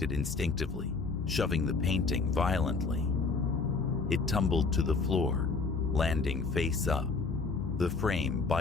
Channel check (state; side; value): quieter; right; 4.3 dB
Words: instinctively, shoving the painting violently. It tumbled to the floor, landing face up, the frame